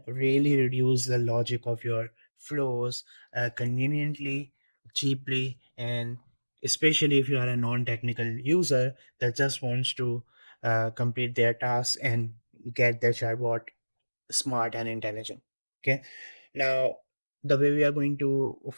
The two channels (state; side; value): inverted; both; correlation -1.00